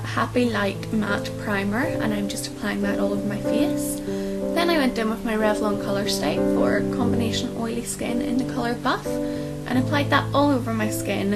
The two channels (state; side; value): identical; both; correlation 1.00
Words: Happy Light Matte Primer and I'm just applying that all over my face. Then I went in with my Revlon Colour Stay for combination oily skin in the colour Buff and applied that all over my